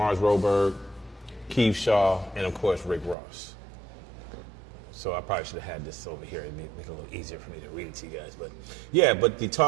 Keith Shaw, and of course Rick Ross. So I probably should have had this over here and make it a little easier for me to read it to you guys. But yeah, but the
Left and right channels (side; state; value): left; drops out; at 3.2 s